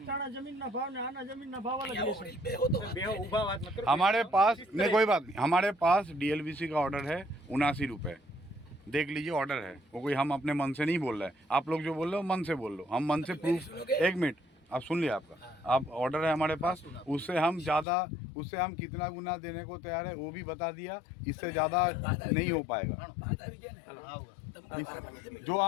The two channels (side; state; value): right; drops out; at 17.9 s